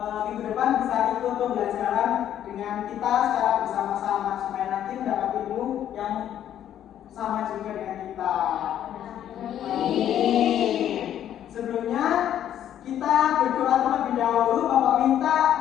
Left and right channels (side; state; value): right; quieter; 10.7 dB